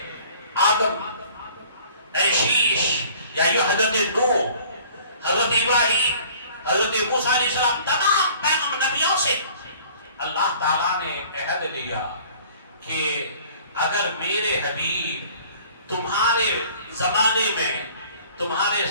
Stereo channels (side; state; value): both; inverted; correlation -0.51